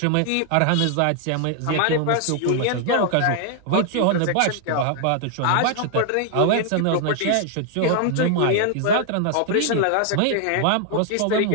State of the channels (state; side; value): different; both; correlation 0.00